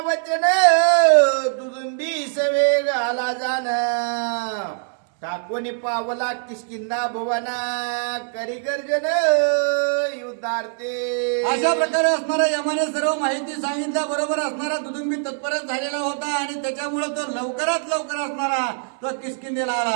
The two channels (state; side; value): silent; left; 64 dB below the other